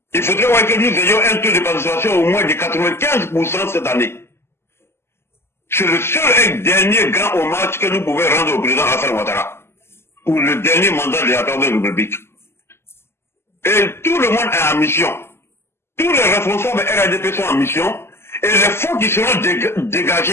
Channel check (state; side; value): late; right; 0.12 ms